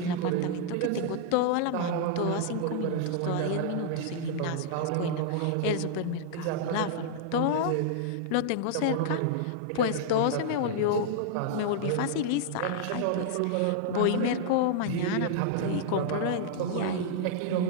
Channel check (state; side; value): different; both; correlation -0.01